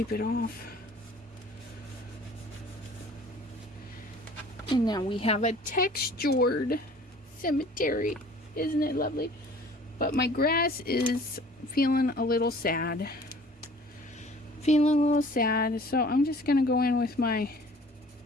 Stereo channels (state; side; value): normal; both; correlation 0.50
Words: it off. And now we have a textured cemetery. Isn't it lovely? But my grass is feeling a little sad. So I'm just going to go in with my